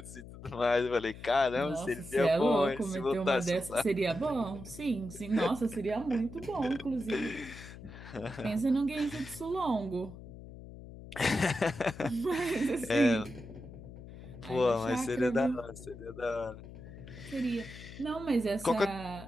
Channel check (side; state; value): left; noise; hum, 14 dB below the sound